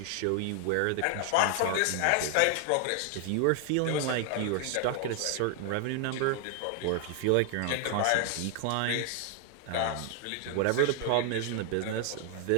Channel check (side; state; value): both; different; correlation 0.00